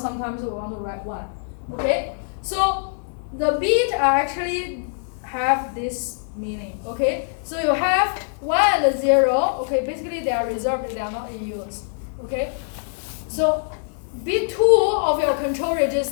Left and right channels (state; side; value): silent; right; digital silence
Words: we want to write 1. Okay, so the bit actually have this meaning. Okay, so you have 1 and 0. Okay, basically they are reserved, they are not in use. Okay, so bit 2 of your control